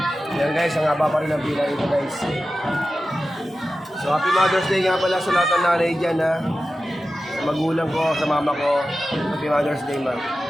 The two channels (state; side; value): normal; both; correlation 0.94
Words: Yan guys, ang haba pa rin ang pila ito guys. So happy Mother's Day nga pala sa lahat ng nanay dyan ha. Sa magulang ko, sa mama ko. Happy Mother's Day ma.